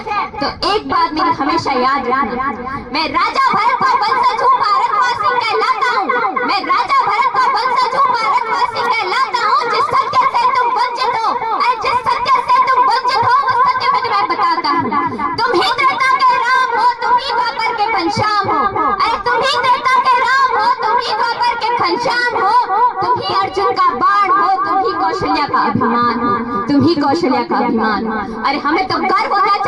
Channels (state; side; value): identical; both; correlation 1.00